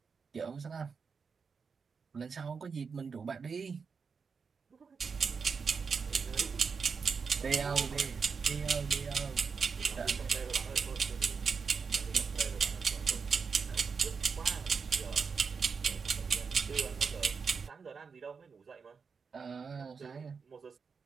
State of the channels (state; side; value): quieter; left; 5.5 dB